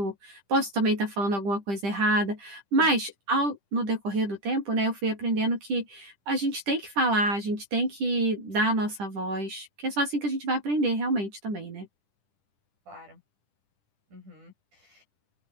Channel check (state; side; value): late; left; 10 ms